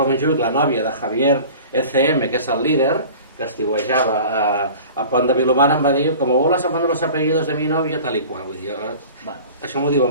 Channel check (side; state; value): both; inverted; correlation -0.41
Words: a Montjuïc, la nòvia de Javier ECM, que és el líder, que estiuejava a Pont de Vilomara, em va dir, com voles aprendre los apellidos de mi novia, tal i qual. Vull dir, això m'ho